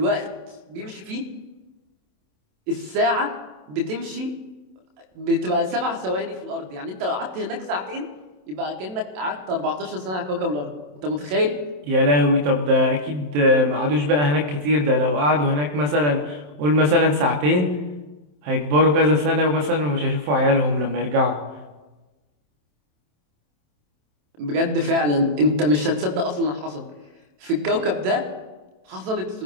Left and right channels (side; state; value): left; late; 27 ms